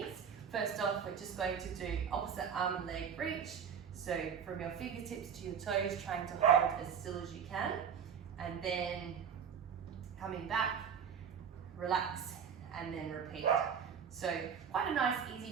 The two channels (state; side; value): quieter; left; 7.4 dB